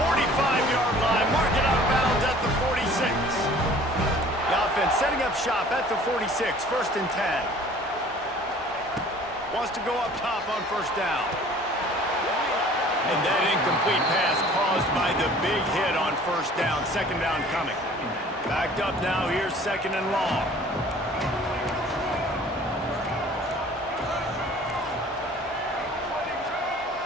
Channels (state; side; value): normal; both; correlation 0.50